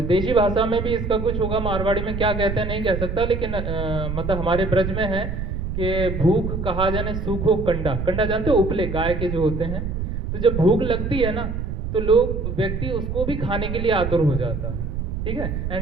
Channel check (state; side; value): noise; right; rumble, 4 dB below the sound